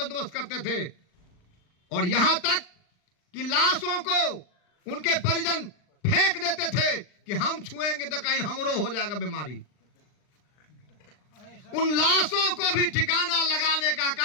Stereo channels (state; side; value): late; right; 39 ms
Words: करते थे। और यहां तक कि लाशों को उनके परिजन फेंक देते थे कि हम छुएंगे तो कहीं हमरो हो जाएगा बीमारी। उन लाशों को भी ठिकाना लगाने का